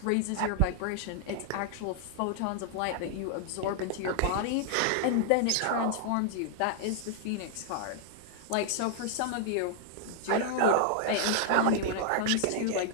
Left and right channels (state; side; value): different; both; correlation 0.00